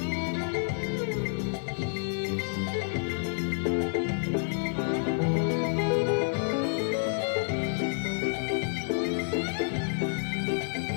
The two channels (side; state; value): right; silent; 58 dB below the other